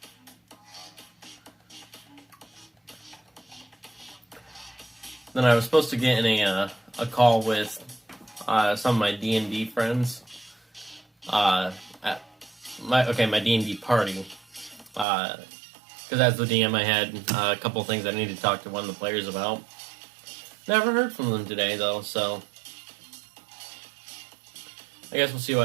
then I was supposed to get in a call with some of my D&D friends. At my D&D party. Because as the DM, I had a couple things I needed to talk to one of the players about. Never heard from them today, though, so I guess we'll see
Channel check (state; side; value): drops out; left; at 15.1 s